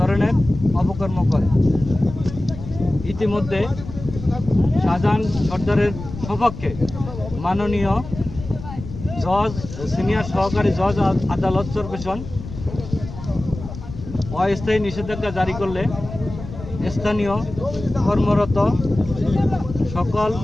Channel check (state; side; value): noise; left; rumble, 11 dB below the sound